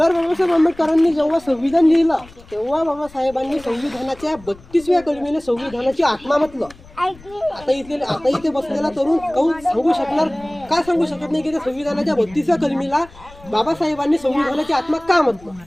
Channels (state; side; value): noise; left; rumble, 22 dB below the sound